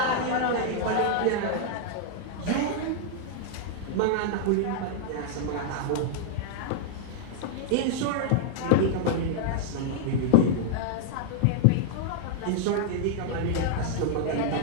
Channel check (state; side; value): different; both; correlation -0.01